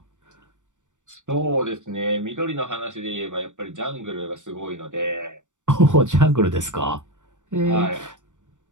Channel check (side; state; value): left; late; 0.86 ms